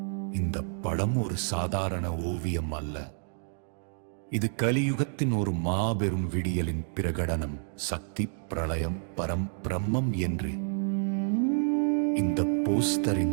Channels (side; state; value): left; silent; 58 dB below the other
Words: இந்த படம் ஒரு சாதாரண ஓவியம் அல்ல. இது கலியுகத்தின் ஒரு மாபெரும் விடியலின் பிரகடனம். சக்தி, பிரளயம், பிரம்மம் என்று இந்த